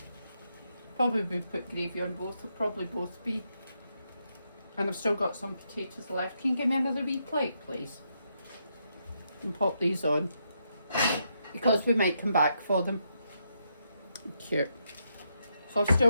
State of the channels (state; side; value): inverted; both; correlation -0.80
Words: Probably will put gravy on both, will probably both be. And I've still got some potatoes left. Can you give me another wee plate, please? And pop these on. Because we might come back for them. Cute. So I've